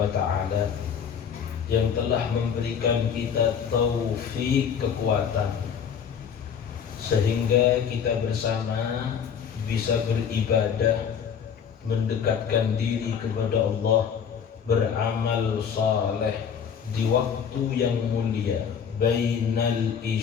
ta'ala yang telah memberikan kita taufik kekuatan sehingga kita bersama bisa beribadah, mendekatkan diri kepada Allah, beramal saleh di waktu yang mulia bainal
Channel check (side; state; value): right; quieter; 7.5 dB